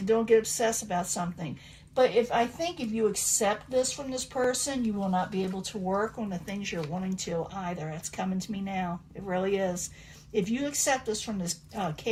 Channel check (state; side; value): identical; both; correlation 1.00